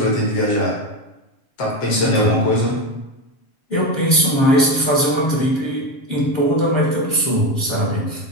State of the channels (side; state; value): right; late; 7.5 ms